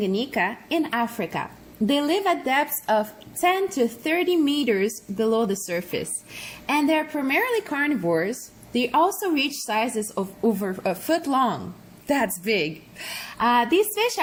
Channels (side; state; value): both; identical; correlation 1.00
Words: in Africa. They live at depths of 10 to 30 meters below the surface, and they're primarily carnivores. They also reach sizes of over a foot long. That's big. These fish